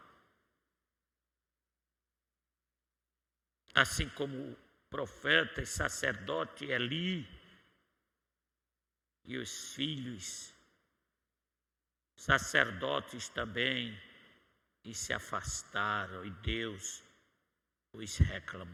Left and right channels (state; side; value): identical; both; correlation 1.00